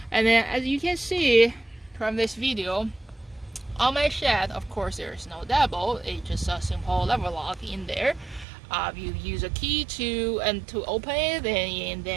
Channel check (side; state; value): left; drops out; at 8.5 s